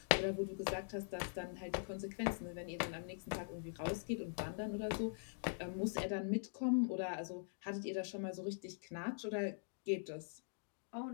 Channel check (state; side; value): silent; right; digital silence